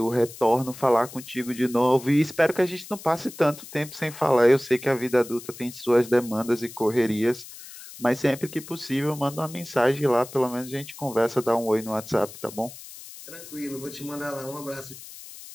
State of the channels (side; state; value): left; noise; hiss, 15 dB below the sound